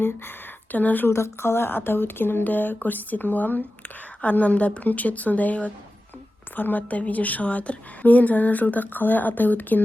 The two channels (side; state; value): both; normal; correlation 0.94